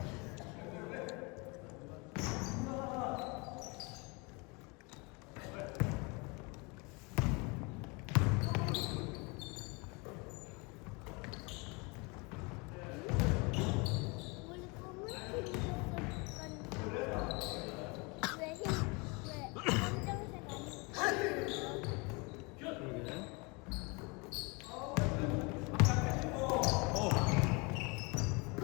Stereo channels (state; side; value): quieter; right; 29.0 dB